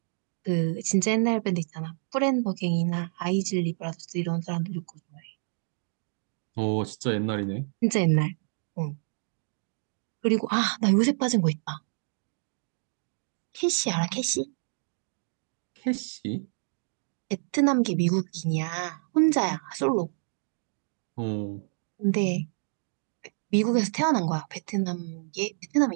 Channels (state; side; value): silent; left; digital silence